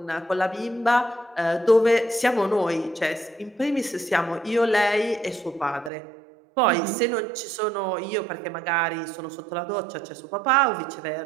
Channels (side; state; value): left; drops out; at 5.9 s